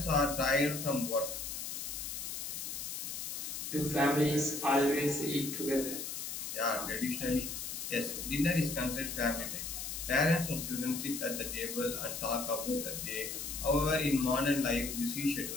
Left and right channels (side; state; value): left; noise; hiss, 5 dB below the sound